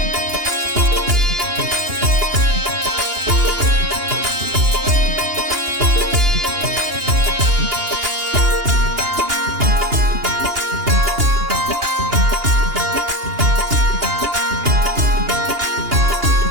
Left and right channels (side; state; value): left; late; 2.8 ms